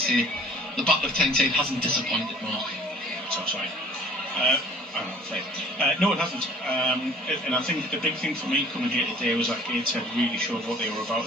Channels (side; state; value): both; normal; correlation 0.51